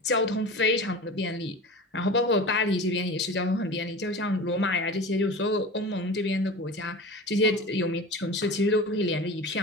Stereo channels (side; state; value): both; normal; correlation 0.33